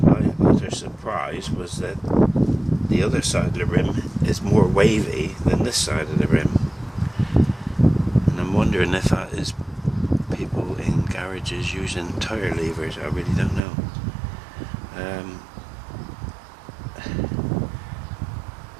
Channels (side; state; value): left; drops out; at 13.6 s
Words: my utter surprise was that the other side of the rim is more wavy than this side of the rim, and I'm wondering if that is people in garages using tire levers. I really don't know.